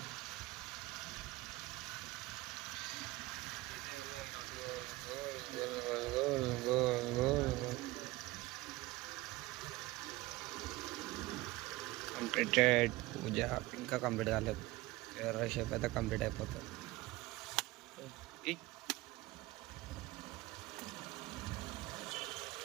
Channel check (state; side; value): quieter; left; 19.8 dB